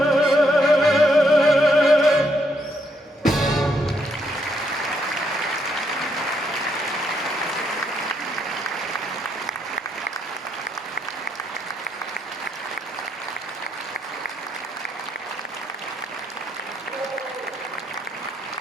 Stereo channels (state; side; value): normal; both; correlation 0.75